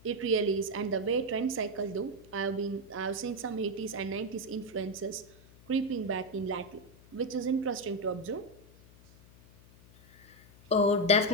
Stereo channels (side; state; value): left; noise; hum, 24 dB below the sound